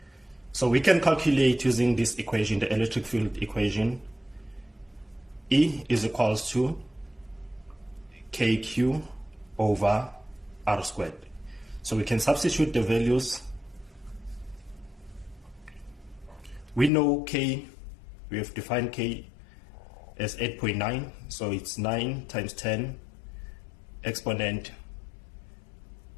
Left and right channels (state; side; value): drops out; right; at 16.9 s